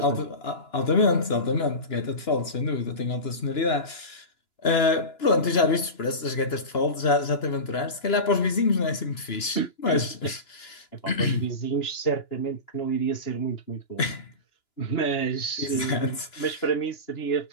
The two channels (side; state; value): right; late; 2.9 ms